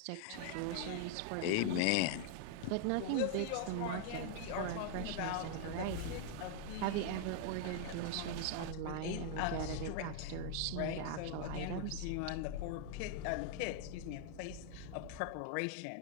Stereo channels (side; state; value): both; different; correlation 0.00